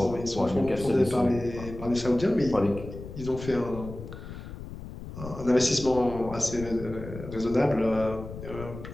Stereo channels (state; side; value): noise; left; rumble, 11 dB below the sound